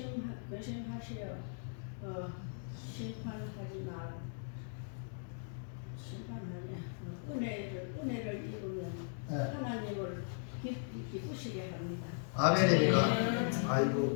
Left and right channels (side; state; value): right; silent; digital silence